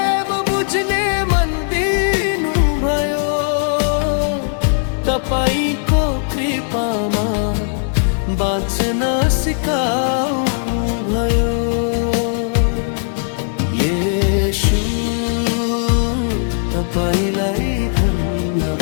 बुझ्ने मन दिनु भयो। तपाईको कृपामा बाँच्न सिकाउनु भयो। येशू तपाईलाई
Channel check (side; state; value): right; silent; digital silence